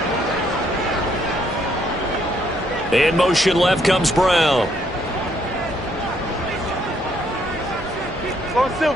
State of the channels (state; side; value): normal; both; correlation 0.70